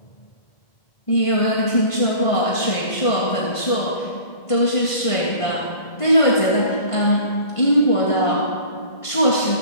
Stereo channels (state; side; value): late; right; 1.5 ms